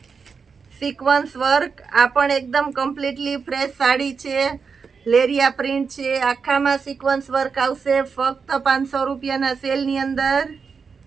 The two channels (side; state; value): left; quieter; 5.5 dB